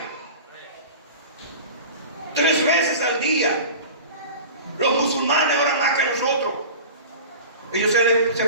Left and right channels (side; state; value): both; inverted; correlation -0.36